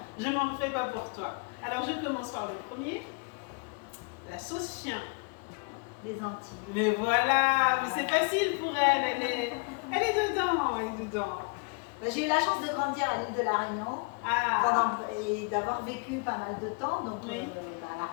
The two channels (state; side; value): quieter; right; 32.8 dB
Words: Je m'en fais pas pour toi. Alors, je commence par le premier. La sauce chien. Les Antilles. Mais voilà, mais c'est facile pour elle. Elle est dedans. J'ai eu la chance de grandir à l'île de la Réunion et d'avoir vécu pas mal de temps, donc à la